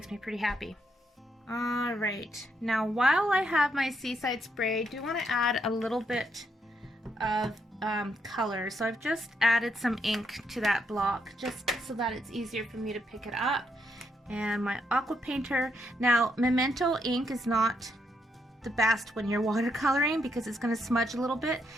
me pretty happy. All right, now while I have my Seaside Spray, I do want to add a little bit of color. So I've just added some ink to that block just so that it's easier for me to pick it up. And my aqua painter. Now, memento ink is not the best when you're watercoloring because it's going to smudge a little bit.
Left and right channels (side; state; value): both; normal; correlation 0.77